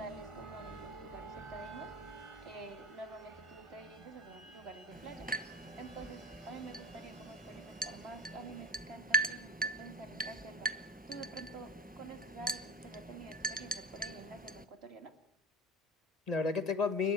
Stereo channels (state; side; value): normal; both; correlation 0.33